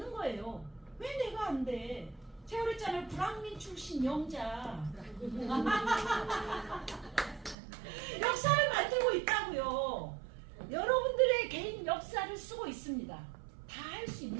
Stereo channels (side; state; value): left; drops out; at 7.6 s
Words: 거예요. 왜 내가 안 돼? 제가 그랬잖아요. 불황민 출신 영자. 역사를 만들고 있다고요. 여러분들의 개인 역사를 쓰고 있습니다. 다 할 수